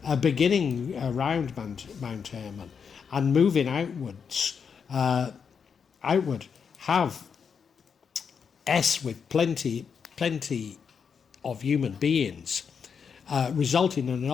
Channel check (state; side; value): quieter; right; 6.5 dB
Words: beginning around Mount Hermon, and moving outward, have with plenty of human beings, resulting in an